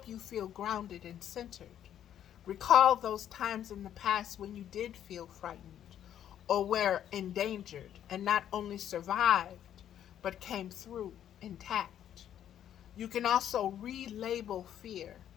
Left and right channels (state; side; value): quieter; right; 10.4 dB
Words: you feel grounded and centered. Recall those times in the past when you did feel frightened or were endangered and not only survived, but came through intact. You can also relabel fear